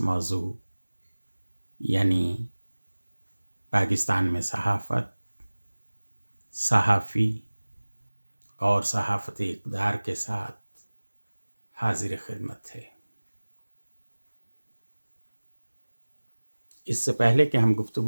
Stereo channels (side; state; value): both; inverted; correlation -1.00